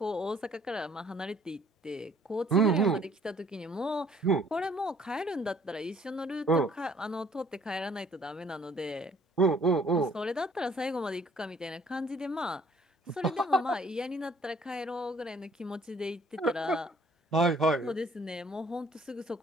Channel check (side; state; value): both; normal; correlation 0.59